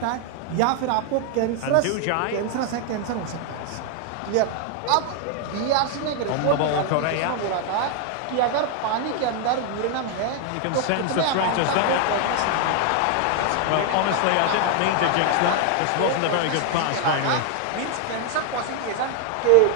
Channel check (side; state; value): both; different; correlation 0.00